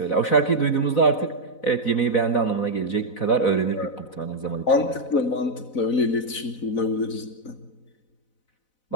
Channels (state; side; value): late; right; 4.0 ms